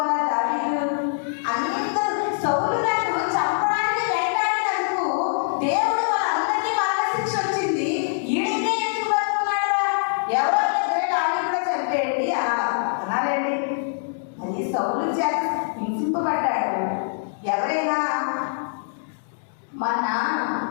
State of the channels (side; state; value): right; silent; 63 dB below the other